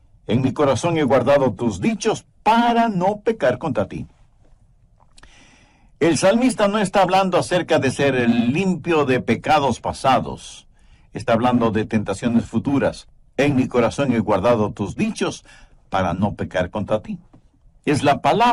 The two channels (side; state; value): both; identical; correlation 1.00